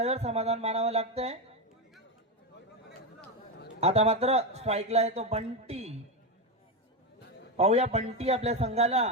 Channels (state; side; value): normal; both; correlation 0.10